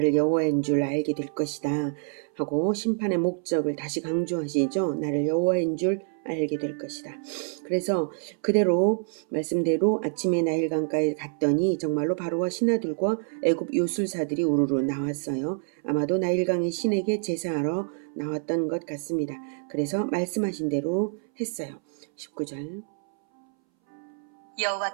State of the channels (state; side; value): silent; left; 60 dB below the other